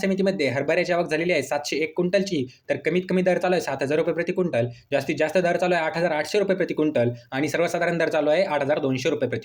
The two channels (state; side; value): identical; both; correlation 1.00